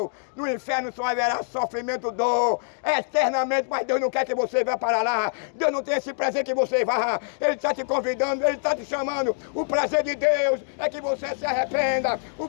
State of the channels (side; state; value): right; silent; digital silence